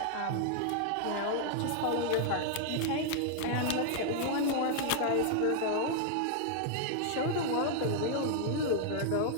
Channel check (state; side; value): different; both; correlation 0.00